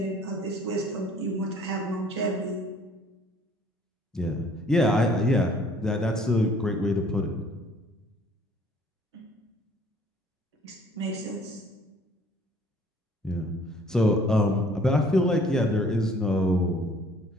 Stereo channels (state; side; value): normal; both; correlation 0.57